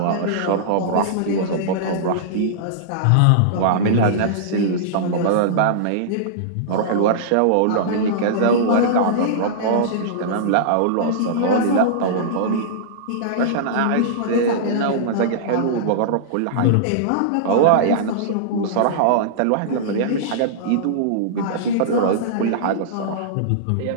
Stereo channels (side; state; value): both; different; correlation -0.02